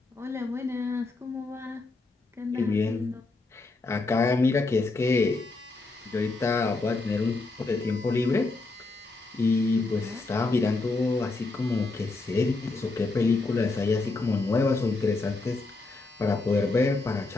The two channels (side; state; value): right; quieter; 3.5 dB